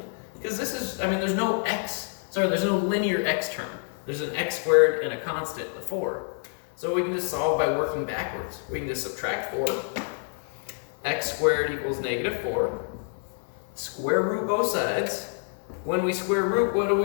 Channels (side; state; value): right; silent; 60 dB below the other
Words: because this is, I mean, there's no linear x term. There's an x squared and a constant, the 4. So we can just solve by working backwards. We can just subtract 4. X squared equals -4. Square root both sides. When we square root, what do